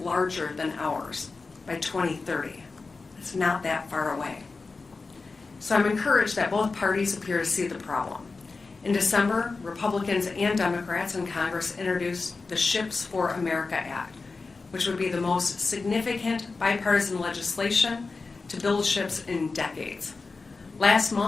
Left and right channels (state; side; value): quieter; right; 4.0 dB